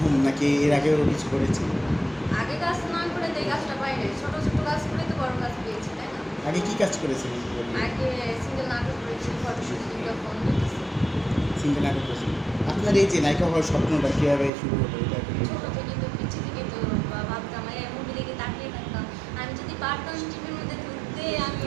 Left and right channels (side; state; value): left; drops out; at 14.5 s